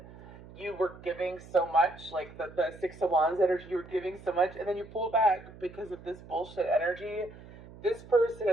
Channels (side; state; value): right; noise; hum, 18 dB below the sound